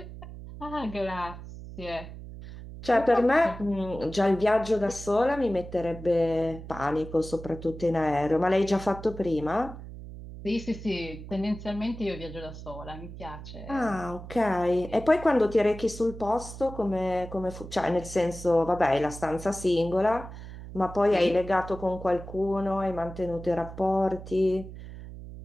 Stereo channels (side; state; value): right; noise; hum, 13 dB below the sound